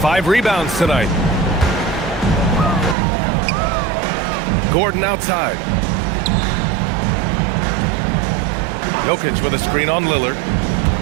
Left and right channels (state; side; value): drops out; left; at 3.0 s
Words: rebounds tonight. Gordon outside. Jokic with a screen on Lillard.